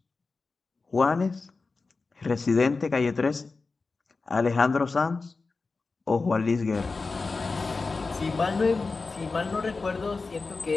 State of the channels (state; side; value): quieter; right; 4.0 dB